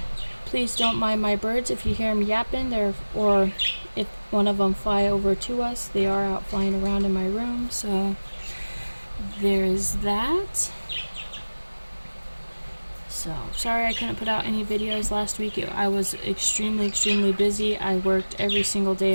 Please don't mind my birds if you hear them yapping or if one of them fly over to us. They are out flying around in my room, so there's that. So, sorry I couldn't put out any videos last week. I was extremely busy. I worked every single day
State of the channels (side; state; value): both; inverted; correlation -1.00